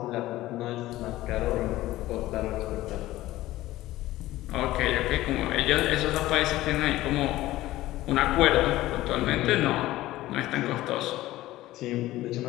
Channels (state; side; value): quieter; right; 16.3 dB